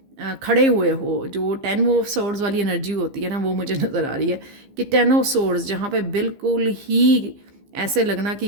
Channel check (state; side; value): late; left; 15 ms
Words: खड़े हुए हो। जो 10 ऑफ सोर्ड्स वाली एनर्जी होती है ना, वो मुझे नज़र आ रही है कि 10 ऑफ सोर्ड्स, जहाँ पे बिल्कुल ही ऐसे लगना